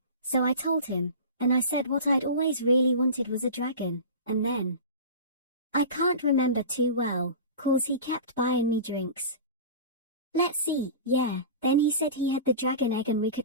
so I told him, and I said what I'd always really wanted was a dragon, and then... I can't remember too well, 'cause he kept buying me drinks. Let's see, then he said he had the dragon egg and we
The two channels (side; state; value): both; inverted; correlation -0.32